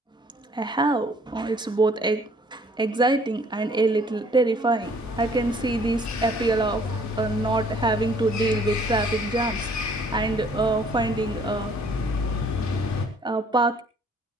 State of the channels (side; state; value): both; normal; correlation 0.59